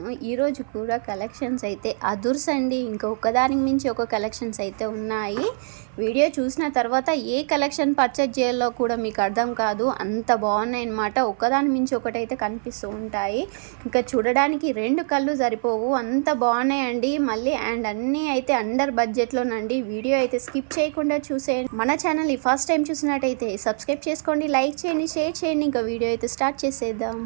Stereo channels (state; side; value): silent; left; 58 dB below the other